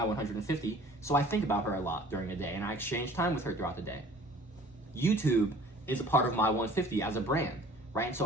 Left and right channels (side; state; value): both; normal; correlation 0.49